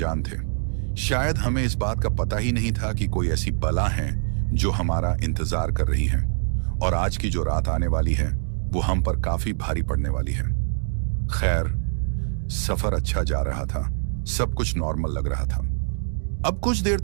थे। शायद हमें इस बात का पता ही नहीं था कि कोई ऐसी बला है जो हमारा इंतजार कर रही है और आज की जो रात आने वाली है वो हम पर काफी भारी पड़ने वाली है। खैर, सफर अच्छा जा रहा था, सब कुछ नॉर्मल लग रहा था। अब कुछ देर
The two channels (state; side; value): silent; left; digital silence